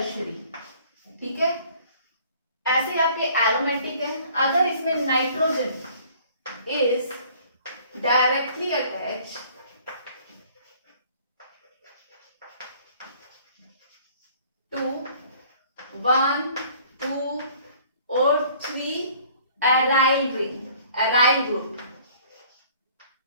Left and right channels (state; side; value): inverted; both; correlation -0.55